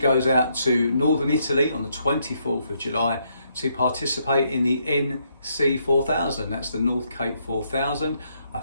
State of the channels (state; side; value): inverted; both; correlation -0.75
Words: out to northern Italy on the 24th of July to participate in the NC 4000. That's the North Cape 4000, a